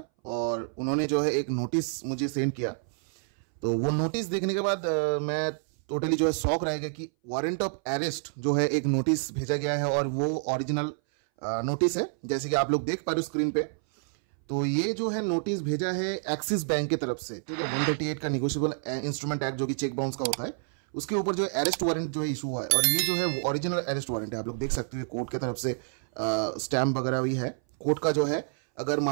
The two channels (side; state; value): left; silent; 59 dB below the other